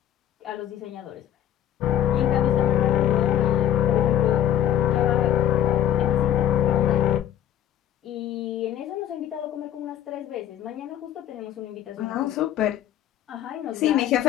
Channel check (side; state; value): right; quieter; 10.9 dB